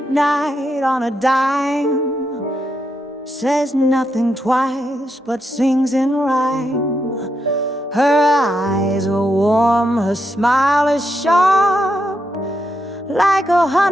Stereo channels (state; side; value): normal; both; correlation 0.82